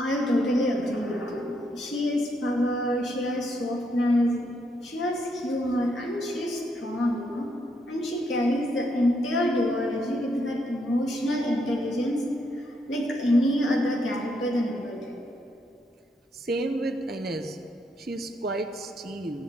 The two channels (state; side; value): normal; both; correlation 0.76